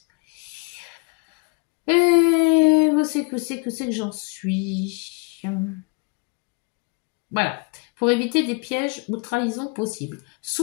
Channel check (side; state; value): right; quieter; 30.2 dB